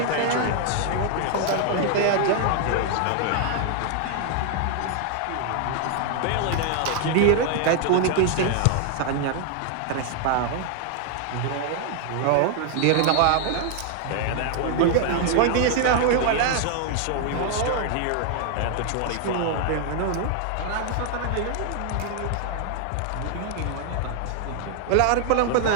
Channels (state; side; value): different; both; correlation 0.00